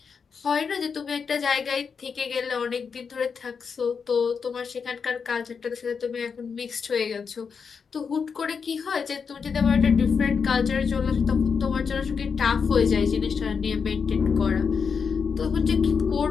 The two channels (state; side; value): quieter; right; 5.9 dB